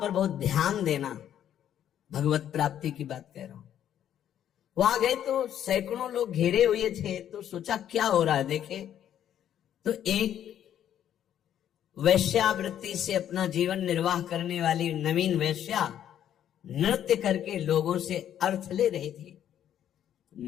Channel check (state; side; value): quieter; right; 10.4 dB